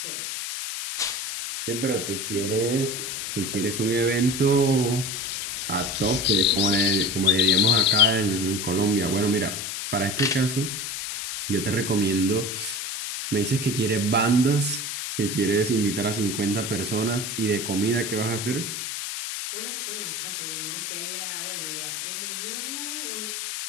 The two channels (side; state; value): left; noise; hiss, 4 dB below the sound